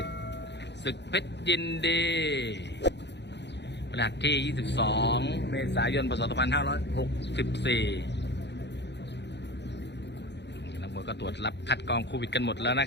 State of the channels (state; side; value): late; right; 0.50 ms